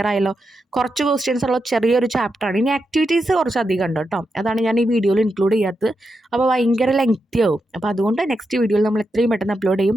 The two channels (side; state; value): both; normal; correlation 0.86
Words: ആയല്ലോ? കുറച്ച് ക്വസ്റ്റ്യൻസ് ഉള്ള ചെറിയൊരു ചാപ്റ്ററാണ്. ഇനി ആക്ടിവിറ്റീസ് കുറച്ച് അധികം ഉണ്ട് കേട്ടോ, അതാണ് ഞാൻ ഈ വീഡിയോയിൽ ഇൻക്ലൂഡ് ചെയ്യാത്തത്. അപ്പോൾ ഭയങ്കര ലെങ്തി ആവും. അപ്പോൾ അതുകൊണ്ട് നെക്സ്റ്റ് വീഡിയോയിൽ നമ്മൾ എത്രയും പെട്ടെന്ന് അപ്ലോഡ്